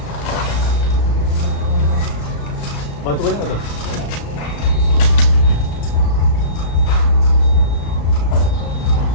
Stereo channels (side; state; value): right; late; 35 ms